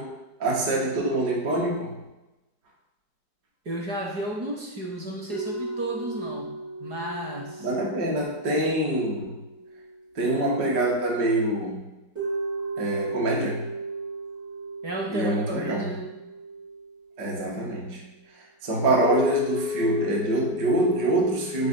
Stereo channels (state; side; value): late; left; 5.1 ms